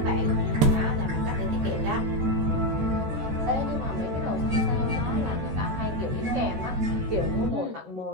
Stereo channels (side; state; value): left; late; 13 ms